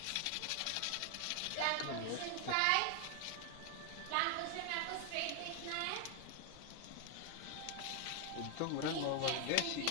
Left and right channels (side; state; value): both; different; correlation 0.00